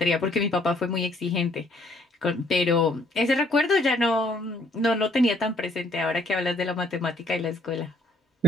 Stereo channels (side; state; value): both; normal; correlation 0.65